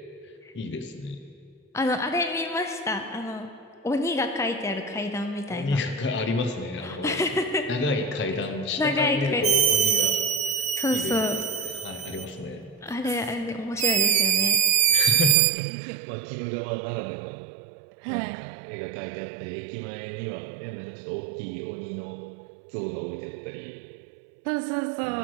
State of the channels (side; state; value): left; drops out; at 15.4 s